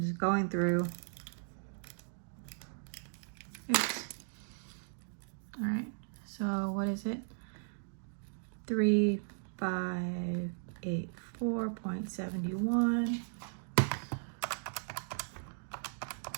just going through. Oops. All right, so what is it? 3584.71.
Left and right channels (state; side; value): silent; left; digital silence